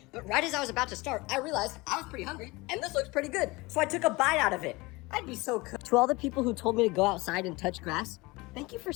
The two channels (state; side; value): quieter; right; 23.2 dB